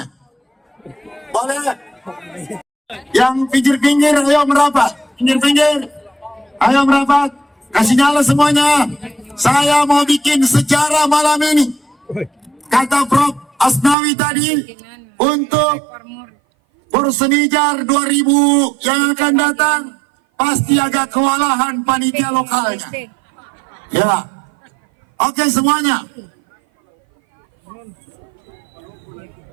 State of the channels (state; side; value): drops out; left; at 14.0 s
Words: Boleh? Yang pinggir-pinggir, ayo merapat. Pinggir-pinggir, ayo merapat. Kasih nyala semuanya. Saya mau bikin sejarah malam ini. Kata Prof. Asnawi tadi, untuk Persenijar 2000 yang akan datang, pasti agak kewalahan panitia lokalnya. Ya, oke semuanya.